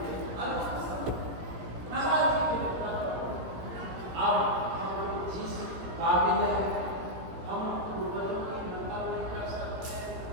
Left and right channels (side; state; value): left; late; 17 ms